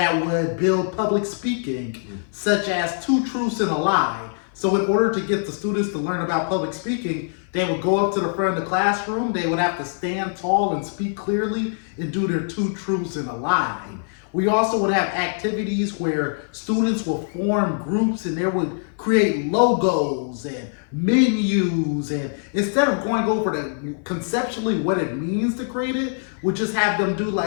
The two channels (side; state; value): right; silent; 56 dB below the other